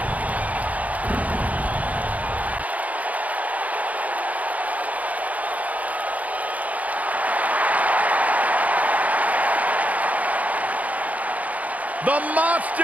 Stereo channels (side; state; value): left; late; 0.073 ms